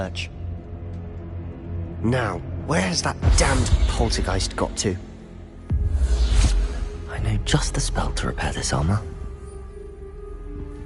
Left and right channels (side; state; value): both; identical; correlation 1.00